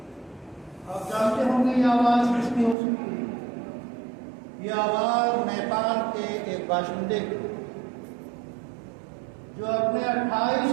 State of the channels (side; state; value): left; drops out; at 2.8 s